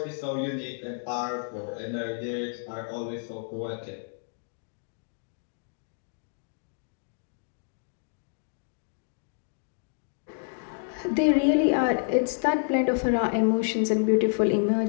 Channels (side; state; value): right; silent; digital silence